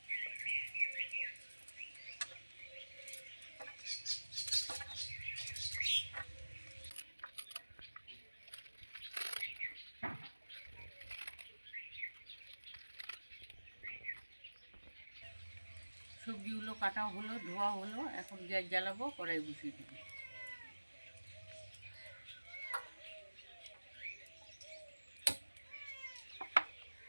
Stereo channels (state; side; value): inverted; both; correlation -1.00